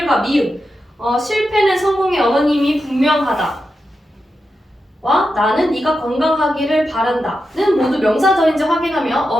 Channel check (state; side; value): normal; both; correlation 0.89